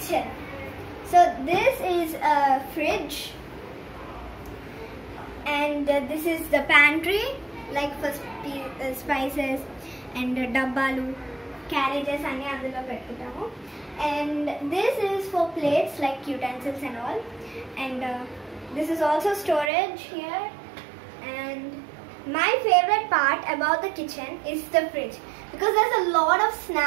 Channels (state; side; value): drops out; left; at 19.7 s